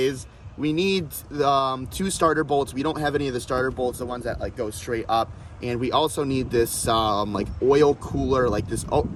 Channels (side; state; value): both; identical; correlation 1.00